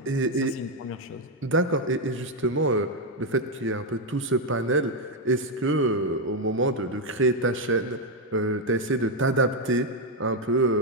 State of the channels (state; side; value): normal; both; correlation 0.03